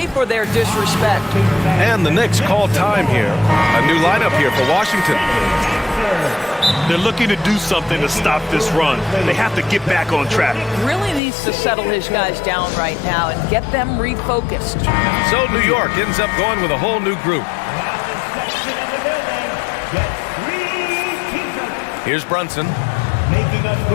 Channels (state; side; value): drops out; right; at 11.2 s